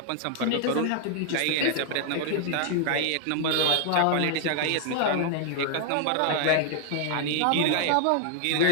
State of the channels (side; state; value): both; different; correlation 0.00